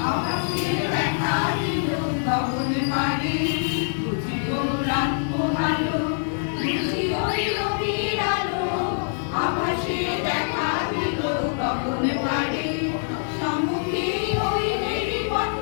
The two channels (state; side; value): silent; right; digital silence